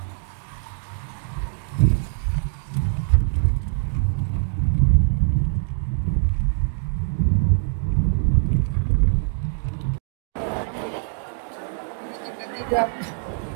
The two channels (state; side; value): silent; left; digital silence